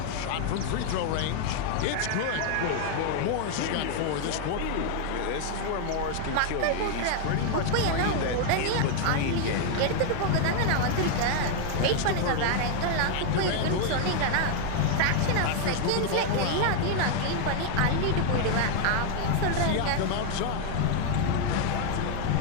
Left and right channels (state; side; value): different; both; correlation 0.00